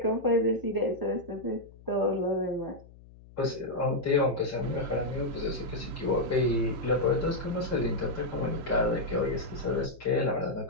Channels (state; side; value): noise; left; hum, 22 dB below the sound